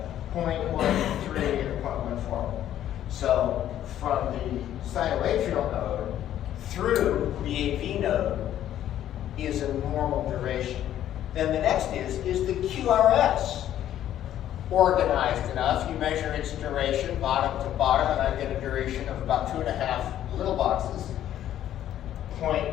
0.13 and 0.14. So from the sinoatrial node through the AV node is a normal duration. Then the next is the QRS organized enough? You measure its duration bottom to bottom, and I get a duration of about 2.5 little boxes,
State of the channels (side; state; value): right; quieter; 11.6 dB